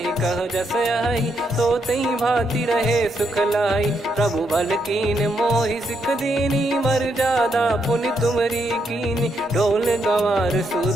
कह जस आई, सोतहि भांति रहे सुख लाई। प्रभु बल कीन मोहि सिख दीनी, मर्यादा पुनि तुमरी कीनी। ढोल गवार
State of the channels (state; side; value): normal; both; correlation 0.78